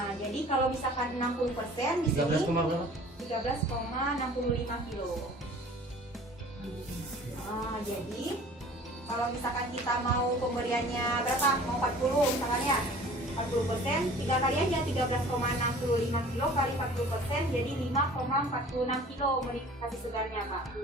jadi kalau misalkan 60% di sini 13,65 kilo. Nah, jadi kalau misalkan kita mau pemberiannya berapa? Mau 40 misalkan ya, 40%, 3 kali aja 13,65 kilo kali 40% jadi 5,46 kilo kasih segarnya Pak,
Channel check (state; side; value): normal; both; correlation 0.47